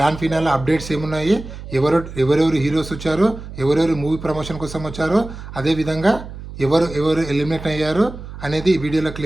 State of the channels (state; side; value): noise; right; hum, 12 dB below the sound